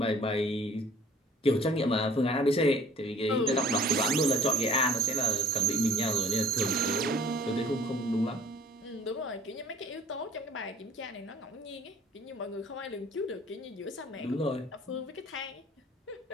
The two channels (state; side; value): normal; both; correlation 0.53